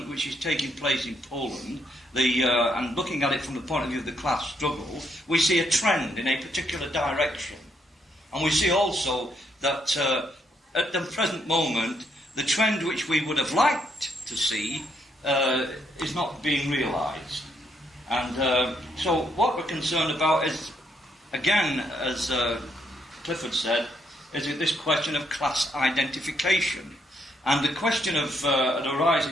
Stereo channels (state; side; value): normal; both; correlation 0.74